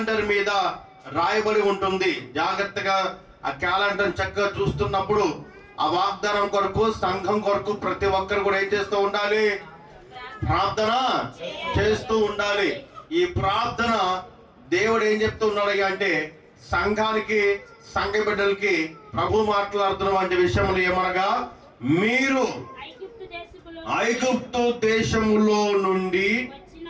ఉంటుంది. జాగ్రత్తగా ఆ క్యాలెండర్ చక్కగా చూస్తున్నప్పుడు ఆ వాగ్దానం కొరకు, సంఘం కొరకు ప్రతి ఒక్కరు కూడా ఏం చేస్తూ ఉండాలి? ప్రార్థన చేస్తూ ఉండాలి. ఈ ప్రార్థన దేవుడు ఏం చెప్తూ ఉన్నాడు అంటే, సంఘానికి, సంఘ బిడ్డలకి ప్రభు మాట్లాడుతున్నటువంటి విషయములు ఏమనగా, మీరు ఐగుప్తు దేశములో నుండి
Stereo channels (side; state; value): both; identical; correlation 1.00